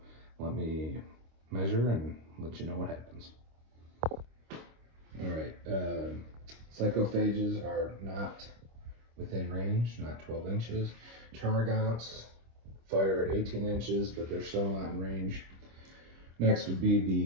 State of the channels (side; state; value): left; late; 26 ms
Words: let me measure and let you know what happens. All right. Psychophages are not within range, not 12 inches. Termagants fire at 18 inches, but they're still not in range. Next would be